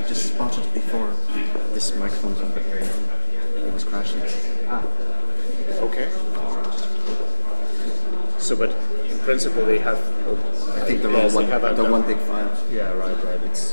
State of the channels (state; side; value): inverted; both; correlation -1.00